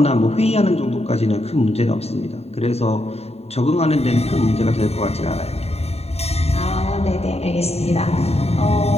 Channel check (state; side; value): late; right; 0.30 ms